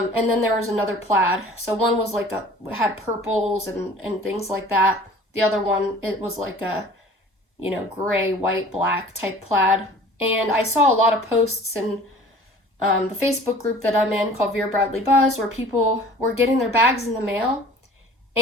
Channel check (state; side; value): normal; both; correlation 0.47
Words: then there was another plaid. So one was like had purples and things like that. The other one, it was like a, you know, gray, white, black type plaid. And I saw a lot of posts in the Facebook group that I'm in called Vera Bradley Buzz, where people were getting their bags in the mail.